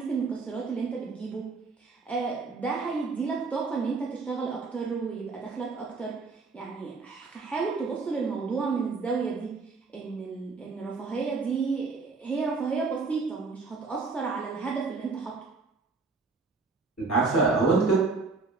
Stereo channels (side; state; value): left; quieter; 4.3 dB